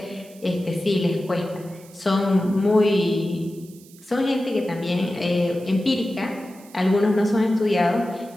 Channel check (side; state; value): right; noise; hiss, 24 dB below the sound